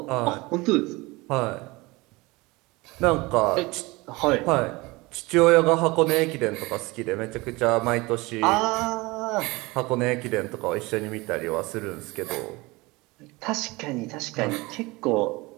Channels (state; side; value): quieter; left; 23.1 dB